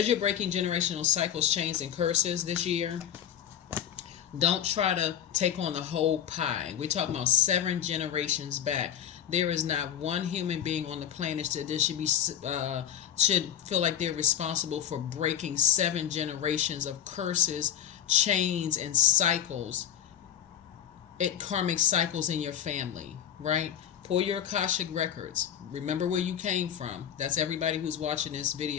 you're breaking generational cycles, chains, and curses this year, don't try to take on the whole pie. We're talking about 7 generations back. There is not one human being on the planet that should feel like they're responsible for breaking 7 generations of curses, chains, and cycles. Karmic cycles in your family, right? Pull your AKASHIC records. Remember where you came from. That's everybody who's watching this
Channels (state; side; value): quieter; right; 10.0 dB